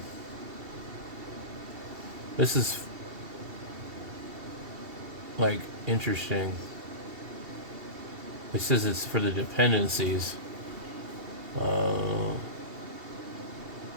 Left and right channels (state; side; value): late; left; 2.7 ms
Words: This is like interesting. It says it's for the dependencies.